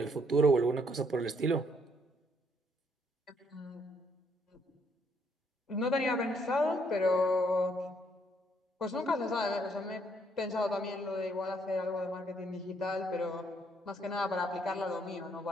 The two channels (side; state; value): both; normal; correlation 0.70